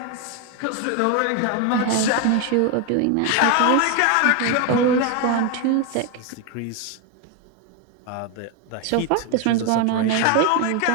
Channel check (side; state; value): both; different; correlation 0.02